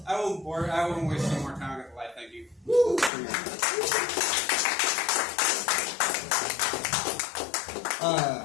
I won't waste any more time. I'm going to lie. Thank you.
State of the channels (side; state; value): right; drops out; at 3.1 s